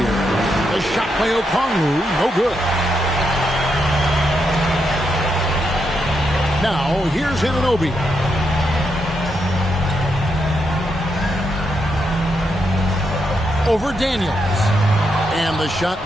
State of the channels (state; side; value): normal; both; correlation 0.81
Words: The shot by Okongwu, no good. Now, here's Anunoby. Over Daniels. And the shot